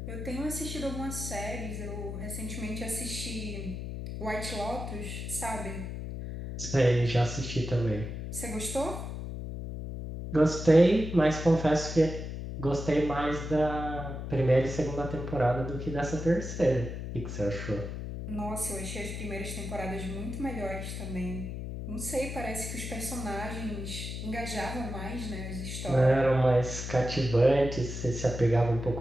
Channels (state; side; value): noise; left; hum, 6 dB below the sound